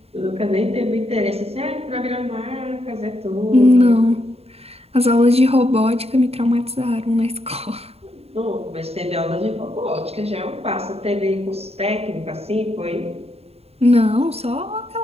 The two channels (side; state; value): left; late; 0.29 ms